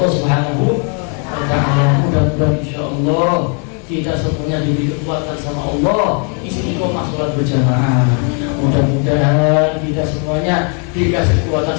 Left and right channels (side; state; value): right; quieter; 39.6 dB